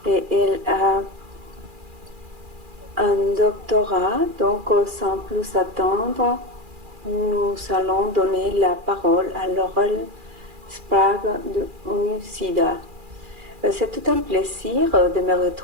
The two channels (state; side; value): late; left; 2.4 ms